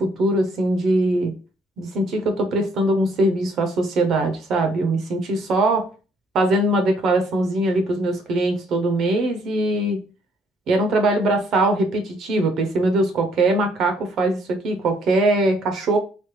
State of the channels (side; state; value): both; normal; correlation 0.66